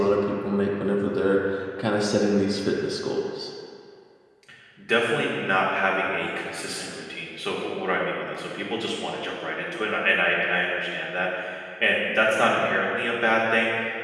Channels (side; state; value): both; identical; correlation 1.00